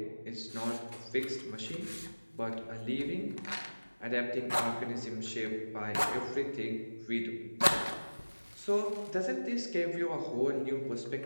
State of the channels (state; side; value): inverted; both; correlation -1.00